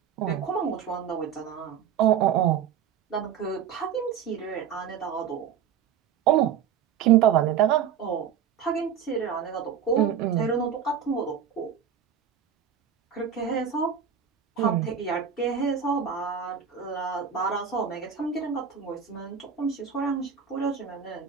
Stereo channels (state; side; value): quieter; left; 8.1 dB